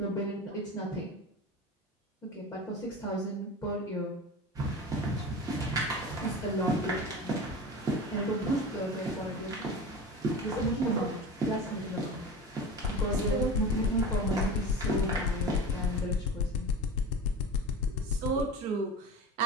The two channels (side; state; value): both; normal; correlation 0.31